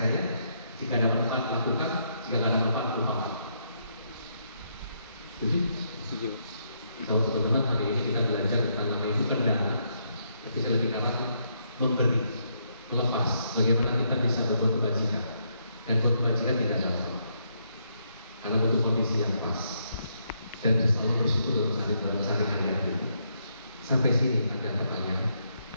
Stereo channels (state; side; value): inverted; both; correlation -0.76